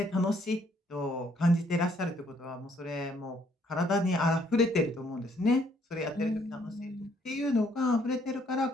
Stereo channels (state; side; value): normal; both; correlation 0.67